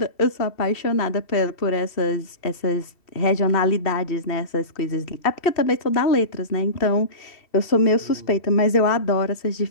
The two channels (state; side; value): late; right; 2.7 ms